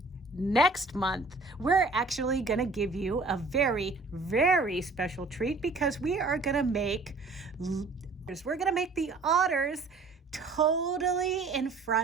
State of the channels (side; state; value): left; quieter; 3.6 dB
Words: Next month, we're actually gonna give you a very, very special treat, because we are gonna make the otters totally in